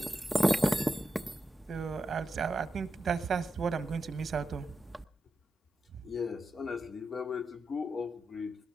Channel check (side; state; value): both; normal; correlation 0.89